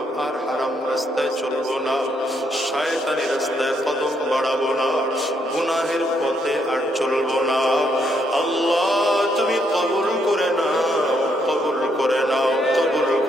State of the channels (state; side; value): normal; both; correlation 0.74